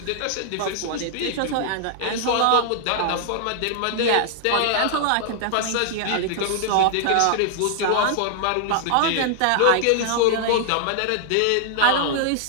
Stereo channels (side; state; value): both; different; correlation -0.01